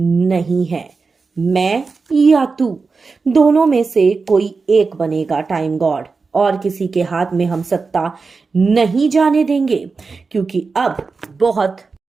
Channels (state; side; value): quieter; left; 4.5 dB